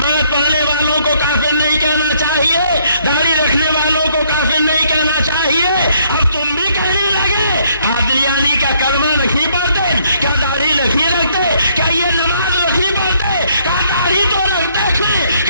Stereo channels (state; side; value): inverted; both; correlation -0.67